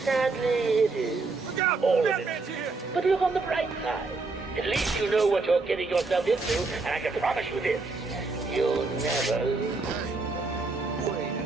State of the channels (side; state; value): left; quieter; 3.8 dB